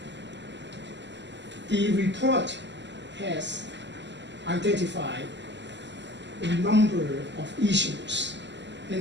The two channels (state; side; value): late; left; 0.52 ms